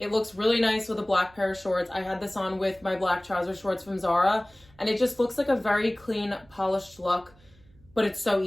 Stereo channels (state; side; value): noise; right; hum, 28 dB below the sound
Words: looks really nice with a black pair of shorts. I had this on with my black trouser shorts from Zara, and it just looks like a very clean, polished look, but it's so